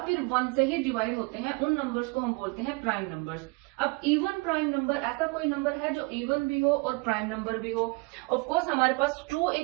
1 से ही डिवाइड होते हैं। उन नंबर्स को हम बोलते हैं प्राइम नंबर्स। अब इवन प्राइम नंबर ऐसा कोई नंबर है जो इवन भी हो और प्राइम नंबर भी हो। ऑफ कोर्स हमारे पास 2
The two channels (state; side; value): quieter; left; 28.0 dB